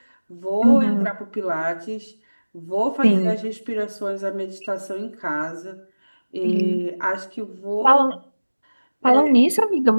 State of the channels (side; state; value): both; inverted; correlation -1.00